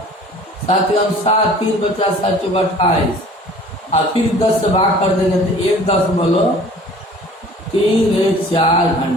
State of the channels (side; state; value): both; normal; correlation 0.48